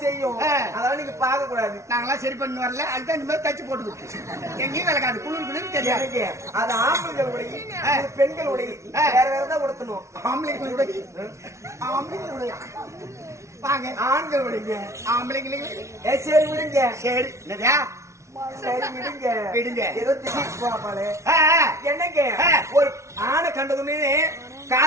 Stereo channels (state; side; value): late; left; 0.14 ms